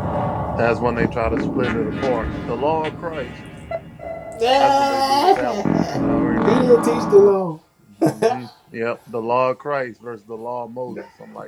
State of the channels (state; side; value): identical; both; correlation 1.00